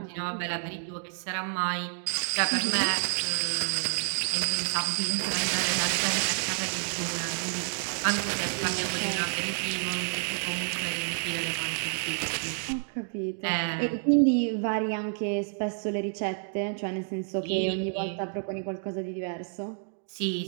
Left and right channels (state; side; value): silent; left; 58 dB below the other